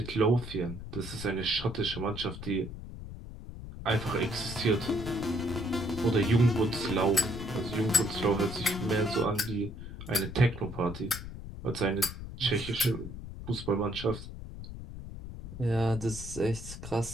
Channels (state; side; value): noise; left; rumble, 11 dB below the sound